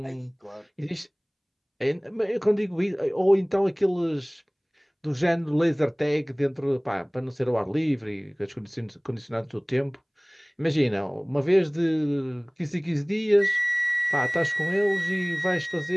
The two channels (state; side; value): identical; both; correlation 1.00